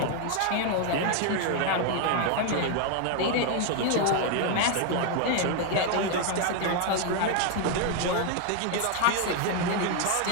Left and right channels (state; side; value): different; both; correlation 0.00